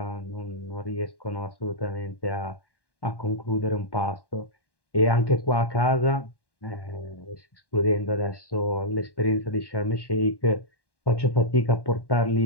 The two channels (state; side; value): late; right; 1.1 ms